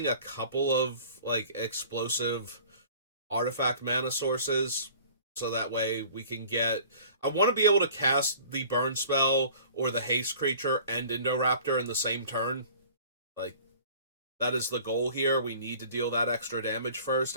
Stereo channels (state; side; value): inverted; both; correlation -0.47